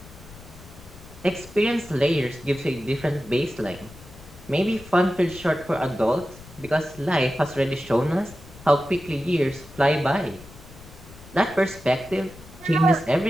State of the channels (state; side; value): noise; left; rumble, 19 dB below the sound